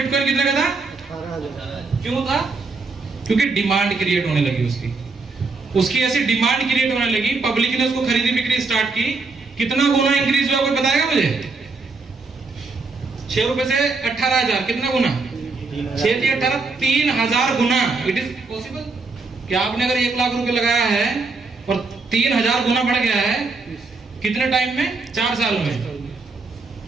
कितने का था? 18,000। क्यों था? क्योंकि डिमांड क्रिएट होने लगी उसकी ऐसी डिमांड क्रिएट होने लगी, पब्लिक ने उसको खरीदी बिक्री स्टार्ट की। कितना गुना इंक्रीज हुआ कोई बताएगा मुझे? 6 रुपए से 18,000, कितना गुना? 6 से 18, 3,000 गुना। इट इज पॉसिबल कि आपने अगर 1 लाख रुपए लगाया है और 3,000 गुना बढ़ गया है, कितने टाइम में? 4 साल में।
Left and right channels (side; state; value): left; quieter; 3.9 dB